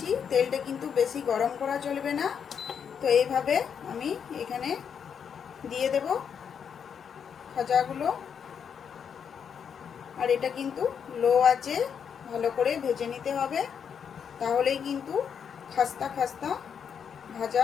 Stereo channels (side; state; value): right; quieter; 7.4 dB